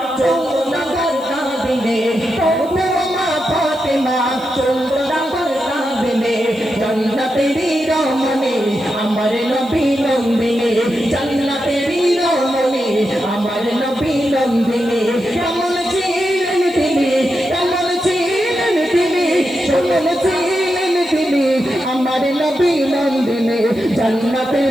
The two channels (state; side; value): noise; right; hiss, 26 dB below the sound